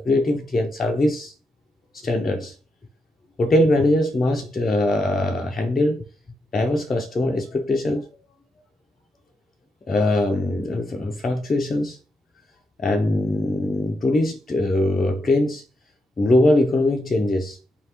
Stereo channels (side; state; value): both; normal; correlation 0.83